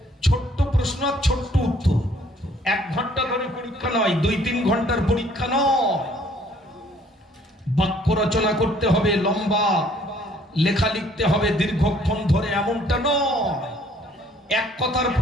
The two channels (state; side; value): normal; both; correlation 0.60